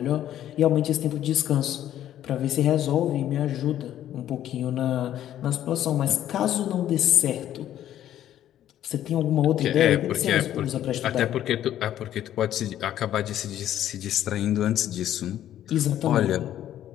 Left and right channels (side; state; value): right; quieter; 11.7 dB